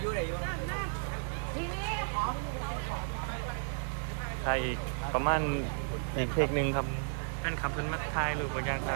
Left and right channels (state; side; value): silent; left; digital silence